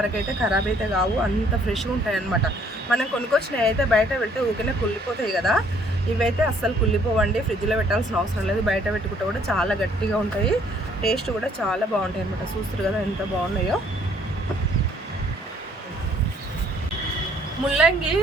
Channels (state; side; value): normal; both; correlation 0.63